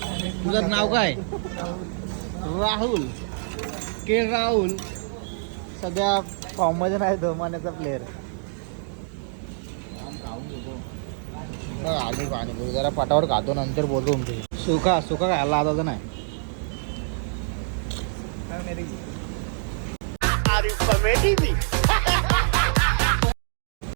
तुझं नाव काय. राहुल के राहुल. सध्या फॉर्ममध्ये नाही तो मान्याचा प्लेअर. खाऊन घेतो आले पाणी जरा पटावर खातो, नंतर बोलतो तुमचे. सुका खायला आता तर नाही.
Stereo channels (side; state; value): left; silent; digital silence